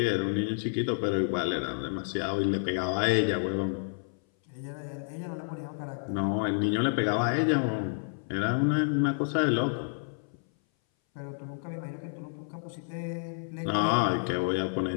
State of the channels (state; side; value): silent; right; 58 dB below the other